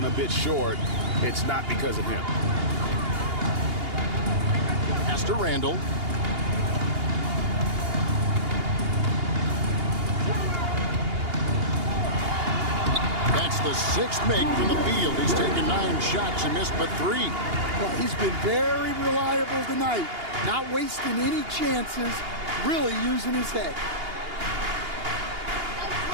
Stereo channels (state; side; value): late; left; 2.8 ms